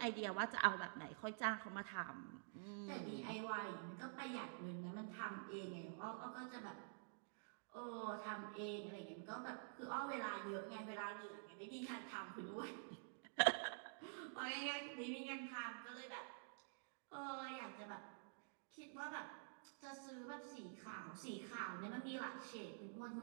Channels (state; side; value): silent; left; digital silence